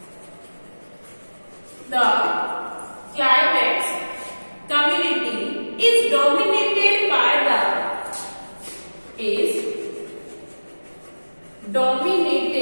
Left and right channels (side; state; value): both; inverted; correlation -1.00